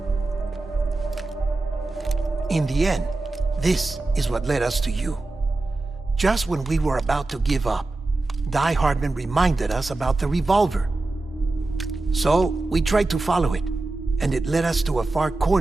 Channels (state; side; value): quieter; left; 3.1 dB